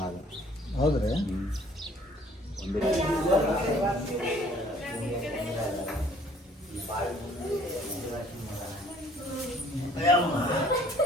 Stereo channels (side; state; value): both; normal; correlation 0.57